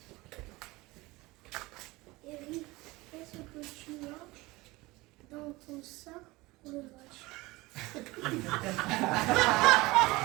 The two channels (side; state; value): left; quieter; 21.4 dB